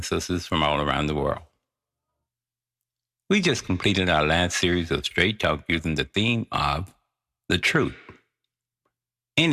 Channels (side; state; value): both; identical; correlation 1.00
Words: sisters from all around the world. We just completed our last series of Straight Talk using the theme of the truth. In